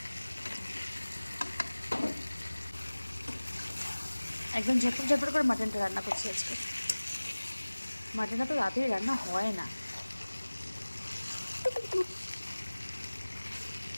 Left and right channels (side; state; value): both; inverted; correlation -1.00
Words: একদম ঝটপট ঝটপট করে মাটনটা রান্না করছি আজকে। মাটনটা তো রাতেই রান্না হয় না।